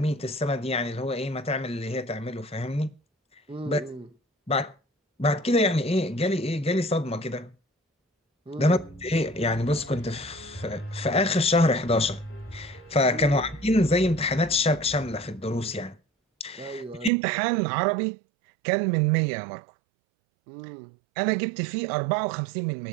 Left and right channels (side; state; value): left; drops out; at 17.1 s